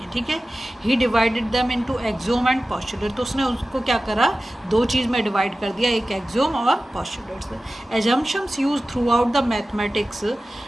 ठीक है, he divided them into axiom and postulate, तो उसने उसको क्या करा, दो चीज़ में डिवाइड कर दिया, एक एक्सोम और postulates. Assumptions use throughout the mathematics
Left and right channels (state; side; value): normal; both; correlation 0.95